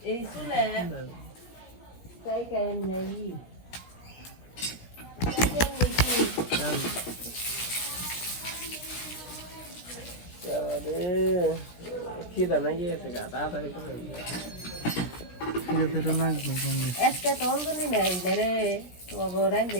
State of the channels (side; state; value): right; late; 16 ms